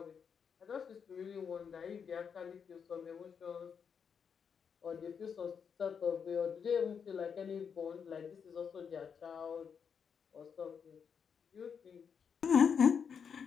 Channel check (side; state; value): right; quieter; 6.8 dB